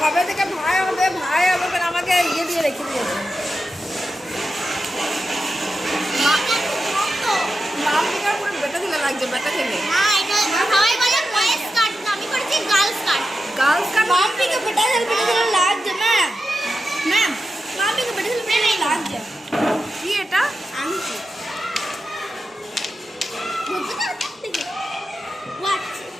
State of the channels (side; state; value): both; normal; correlation 0.90